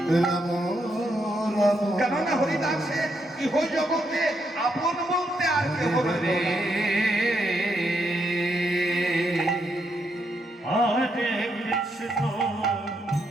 রাম রাম কেননা হরিদাসের ইহ জগতে আপন বলতে আর কেহ হরে হরে কৃষ্ণ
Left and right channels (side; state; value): both; normal; correlation 0.79